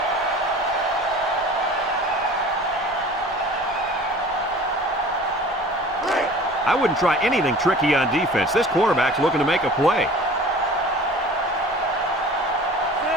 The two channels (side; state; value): both; normal; correlation 0.43